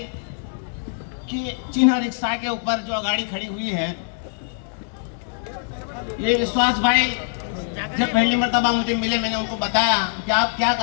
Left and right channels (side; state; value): right; silent; digital silence